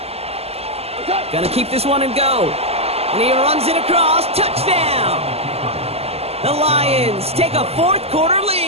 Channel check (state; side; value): late; left; 0.29 ms